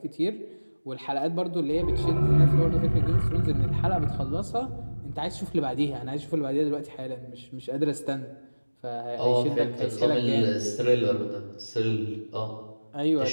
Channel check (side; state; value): both; inverted; correlation -1.00